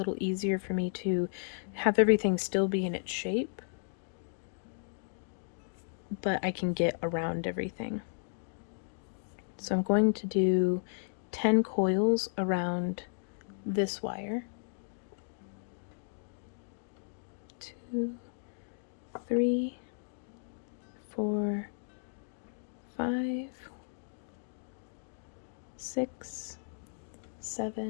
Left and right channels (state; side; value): silent; right; digital silence